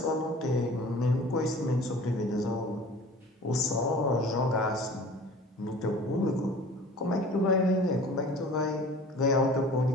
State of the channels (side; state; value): both; normal; correlation 0.44